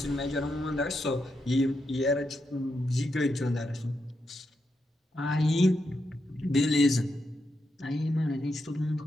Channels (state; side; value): normal; both; correlation 0.84